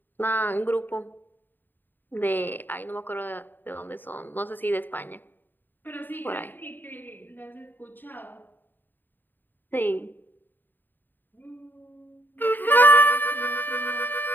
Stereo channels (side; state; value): right; late; 0.092 ms